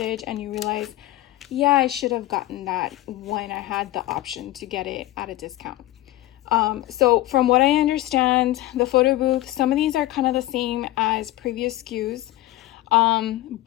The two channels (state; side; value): quieter; right; 16.2 dB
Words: and you realize, yeah, I should have gotten that when I had the option to get it at a discount. So from what I understand, the photo booth, some of these are kind of the same as previous SKUs,